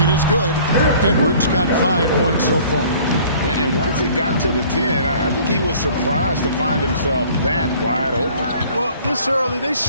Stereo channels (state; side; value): inverted; both; correlation -0.52